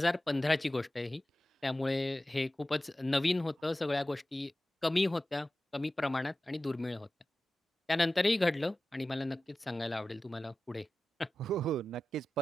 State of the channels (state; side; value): normal; both; correlation 0.95